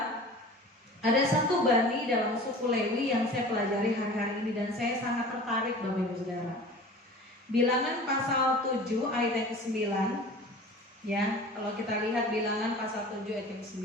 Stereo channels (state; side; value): normal; both; correlation 0.40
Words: ada satu bani dalam suku Lewi yang saya pelajari hari-hari ini dan saya sangat tertarik, Bapak Ibu Saudara. Bilangan pasal 7 ayat yang ke-9. Ya, kalau kita lihat Bilangan pasal 7 ayat yang ke-9,